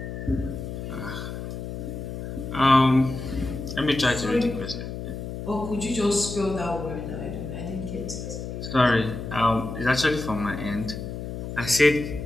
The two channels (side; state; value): left; noise; hum, 7 dB below the sound